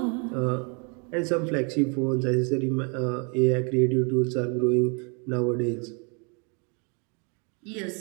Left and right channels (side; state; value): left; quieter; 35.6 dB